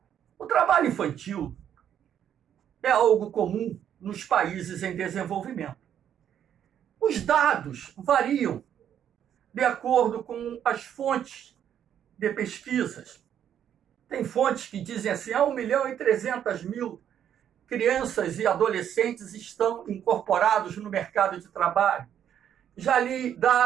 O trabalho infantil é algo comum nos países em desenvolvimento. Os dados variam de acordo com as fontes de pesquisas. Tem fontes que dizem assim, 1.300.000 crianças e adolescentes estão incorporados no mercado de trabalho. Já li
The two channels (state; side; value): quieter; left; 9.6 dB